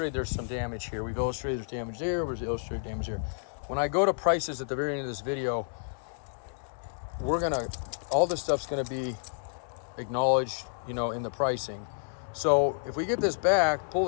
there's some damage here. We've illustrated there's damage there. We've illustrated damage here. When I go to prices at the very end of this video, all this stuff's gonna be acknowledged, you know, in the pricing. So if we get this back, pull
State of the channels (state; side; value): silent; right; 58 dB below the other